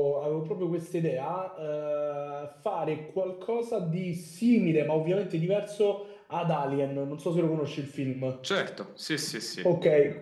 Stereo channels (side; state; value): both; identical; correlation 1.00